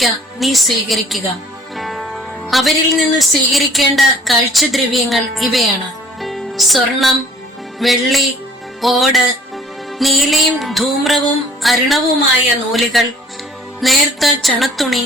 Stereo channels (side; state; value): both; normal; correlation 0.54